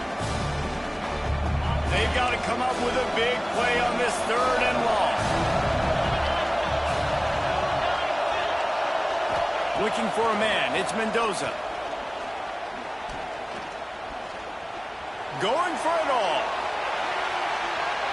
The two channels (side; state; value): both; identical; correlation 1.00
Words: They've got to come up with a big play on this 3rd and long. Looking for a man. It's Mendoza. Going for it all.